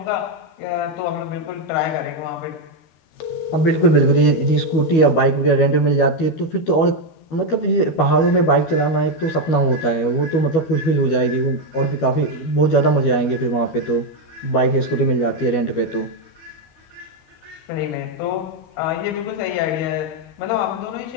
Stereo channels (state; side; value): late; right; 12 ms